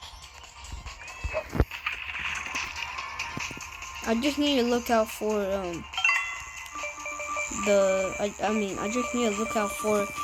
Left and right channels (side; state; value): both; identical; correlation 1.00